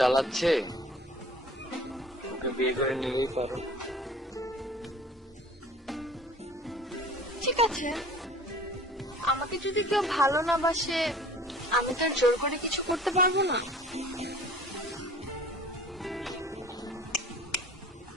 ওকে বিয়ে করে নিলেই পারো। ঠিক আছে, আমাকে যদি কেউ ভালো না বাসে আমি তো আর জোর করে কিছু করতে পারবো না।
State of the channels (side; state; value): both; normal; correlation 0.47